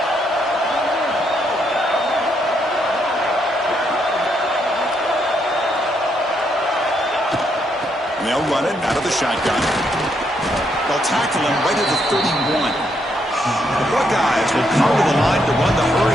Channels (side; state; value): both; normal; correlation 0.76